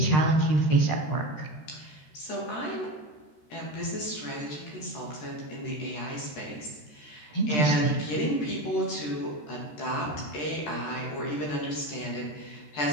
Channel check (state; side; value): late; right; 13 ms